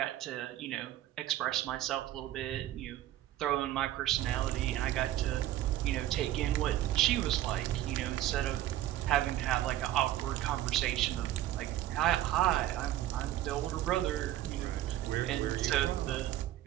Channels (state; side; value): quieter; left; 13.6 dB